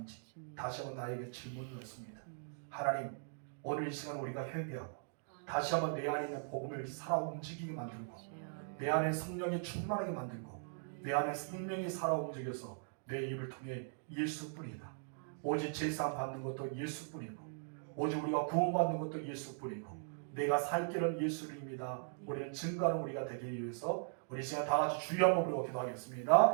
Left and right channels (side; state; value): left; silent; digital silence